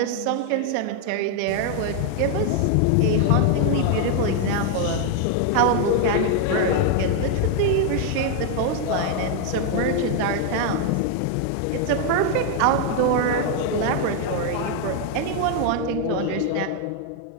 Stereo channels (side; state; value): both; different; correlation 0.00